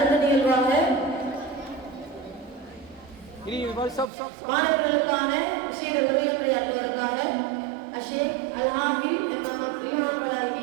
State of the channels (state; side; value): drops out; left; at 4.1 s